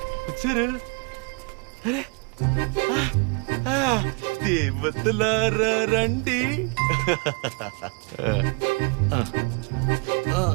వచ్చారు. అరే దేవతలారా రండి.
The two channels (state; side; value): quieter; left; 32.8 dB